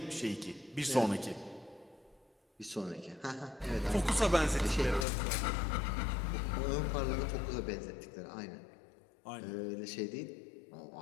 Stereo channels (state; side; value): drops out; right; at 5.1 s